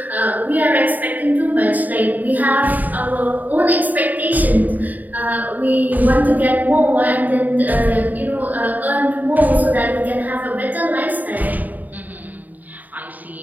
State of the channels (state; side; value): late; left; 0.082 ms